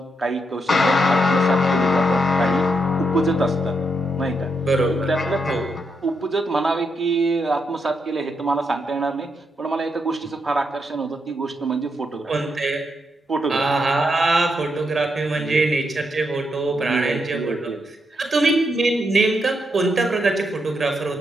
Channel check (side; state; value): both; normal; correlation 0.81